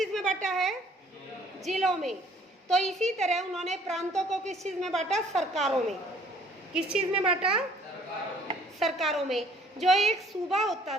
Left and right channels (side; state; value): both; normal; correlation 0.58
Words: में बांटा है? जिलों में। तो इसी तरह उन्होंने प्रांतों को किस चीज में बांटा? सरकारों में। किस चीज में बांटा? सरकारों में। जो एक सूबा होता